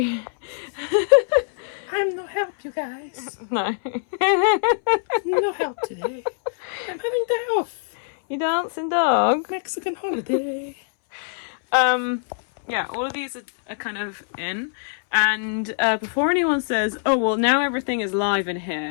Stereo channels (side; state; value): right; silent; 61 dB below the other